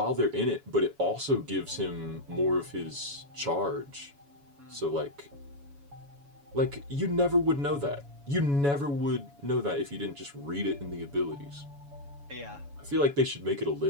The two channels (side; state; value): left; late; 7.1 ms